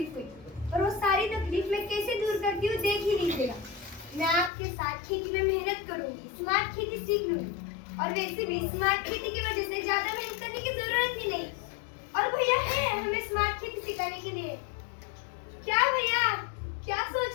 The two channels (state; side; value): drops out; right; at 4.5 s